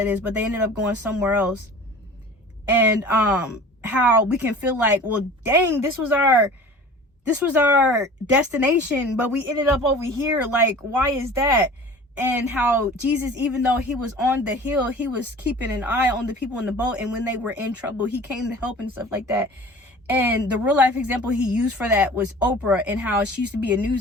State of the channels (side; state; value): both; normal; correlation 0.42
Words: is, but they ended up going somewhere else. And how we can feel like, well, dang, this was our destination, but we ended up over here. Like, why is that? And how Jesus, even though he was on the hill, he was keeping an eye on the people in the boat, and when they were in trouble, he came to help and stuff like that. And the real life example he used for that was Oprah, and how she used to be a